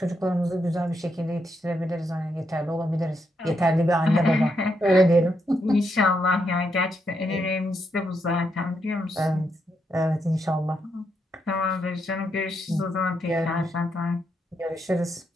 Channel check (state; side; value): normal; both; correlation 0.80